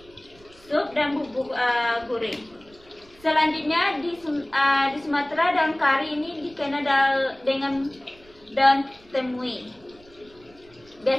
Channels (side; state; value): right; noise; rumble, 27 dB below the sound